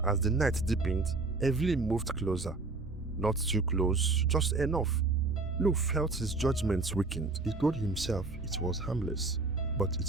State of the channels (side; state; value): left; quieter; 3.5 dB